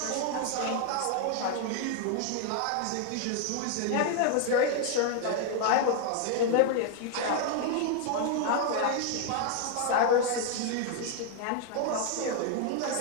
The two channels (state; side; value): different; both; correlation 0.00